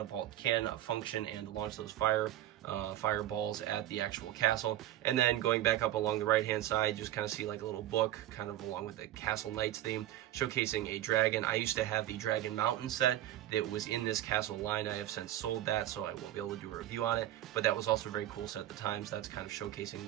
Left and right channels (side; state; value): left; quieter; 13.5 dB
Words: can function and launch those fireballs at the actual castle. And then going back up along the right hand side, you just kind of see like a little book kind of along with the Castle Knights theme, showcasing a dragon. I used to have the Dragon Mountain set that was in this castle line. I have since sold that, so I won't be able to do a review on it, but that was also a very cool set at the time, so that's kind of showcasing